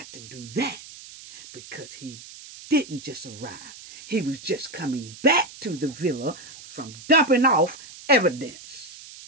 to do that. Because he didn't just arrive. He was just coming back to the villa from dumping off evidence.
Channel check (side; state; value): right; noise; hiss, 16 dB below the sound